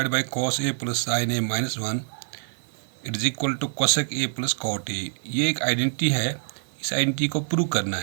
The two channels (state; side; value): silent; left; 61 dB below the other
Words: by cos a plus sin a minus 1 it is equal to cosec a plus cot a. ये एक identity है, इस identity को प्रूव करना